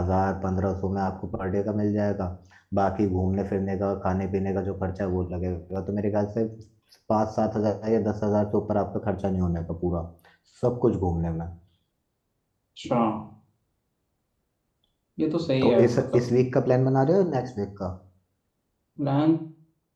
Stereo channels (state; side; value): identical; both; correlation 1.00